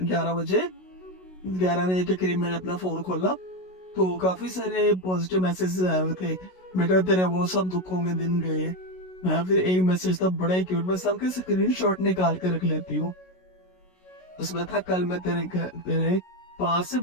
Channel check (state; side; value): late; right; 16 ms